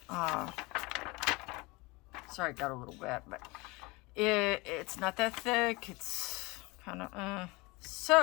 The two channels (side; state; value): right; quieter; 24.6 dB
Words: Sorry, it got a little wet, but it's not that thick. It's kind of,